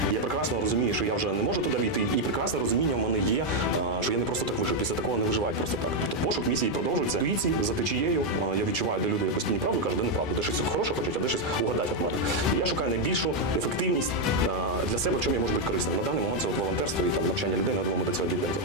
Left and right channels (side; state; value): both; normal; correlation 0.02